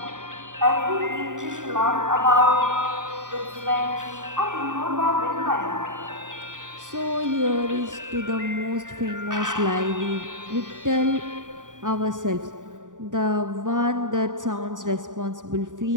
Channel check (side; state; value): left; late; 0.88 ms